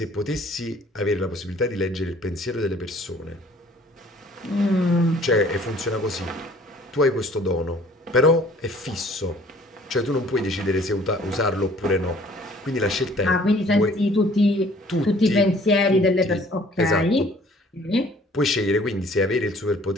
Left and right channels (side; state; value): both; normal; correlation 0.55